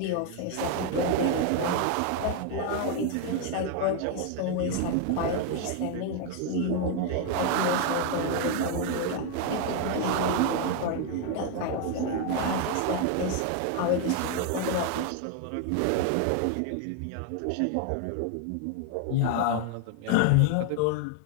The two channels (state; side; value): different; both; correlation 0.01